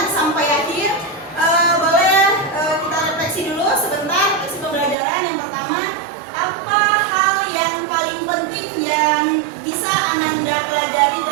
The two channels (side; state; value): left; drops out; at 5.0 s